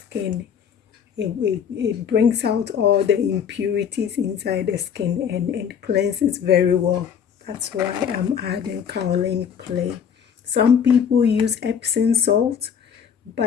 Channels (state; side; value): quieter; right; 7.7 dB